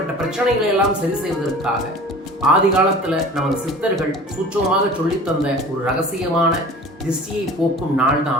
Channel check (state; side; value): normal; both; correlation 0.42